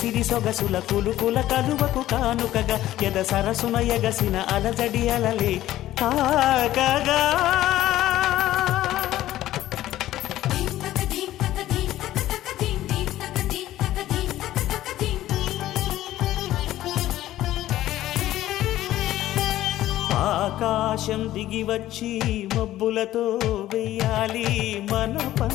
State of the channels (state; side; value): quieter; right; 14.2 dB